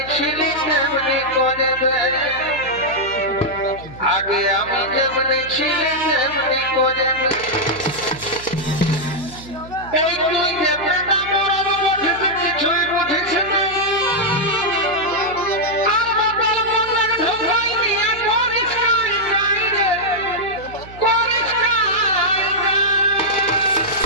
ছিলি তেমনি করে দেয় আগে আমি যেমনি ছিলি তেমনি করে এই তুই যে বেটা মরব বুঝিস কিছুই বুঝিস না আর বাবার মনে ঢোকাই নিয়ে করিস নাই রে করিস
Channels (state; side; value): noise; right; hum, 17 dB below the sound